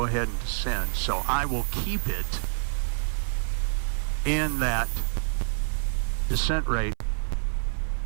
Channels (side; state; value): left; silent; 60 dB below the other